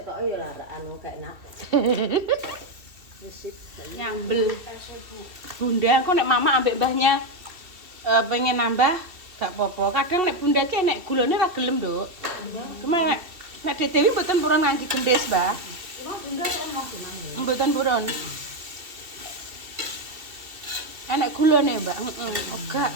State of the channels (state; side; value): late; left; 2.8 ms